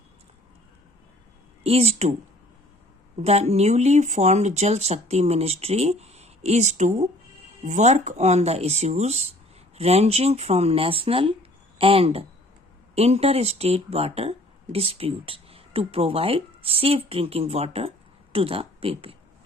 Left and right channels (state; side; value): normal; both; correlation 0.54